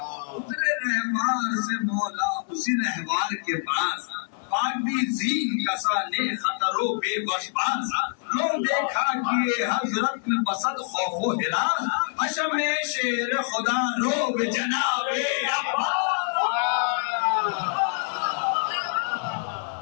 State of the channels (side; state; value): right; silent; digital silence